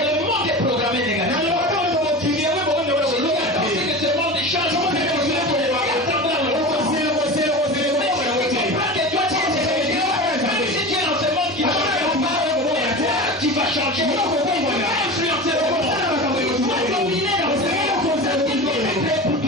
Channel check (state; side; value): normal; both; correlation 0.30